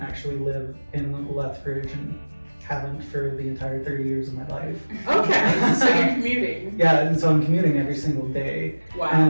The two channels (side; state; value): both; inverted; correlation -1.00